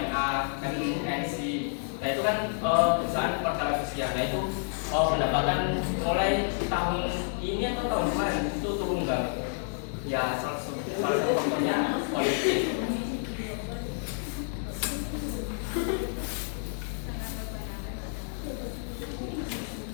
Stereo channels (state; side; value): silent; right; digital silence